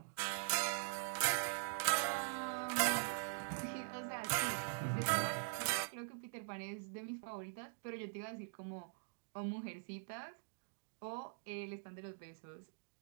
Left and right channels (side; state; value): left; silent; digital silence